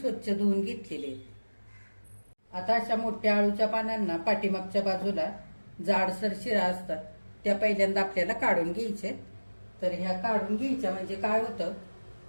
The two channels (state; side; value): inverted; both; correlation -1.00